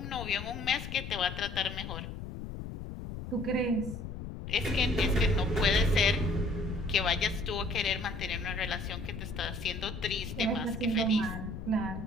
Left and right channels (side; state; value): left; noise; rumble, 8 dB below the sound